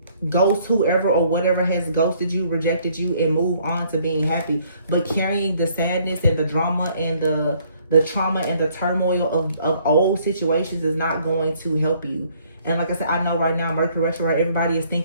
Ghost whoever or whatever has ghosted you, rejected you, and move on to being happy. But carrying the sadness and the drama and the trauma and the turmoil of old situations is not going to help you. And like I said, I know right now, Mercury retrograde, everybody is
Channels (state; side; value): inverted; both; correlation -0.63